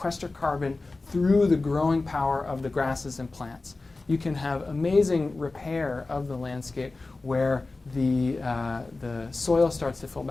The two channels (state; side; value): quieter; right; 3.4 dB